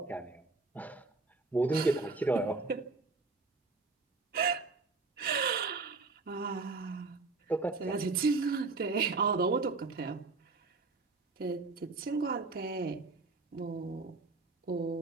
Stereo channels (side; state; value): left; quieter; 3.9 dB